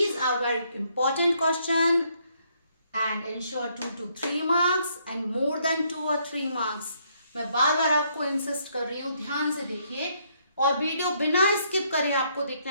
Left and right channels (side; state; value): both; inverted; correlation -0.71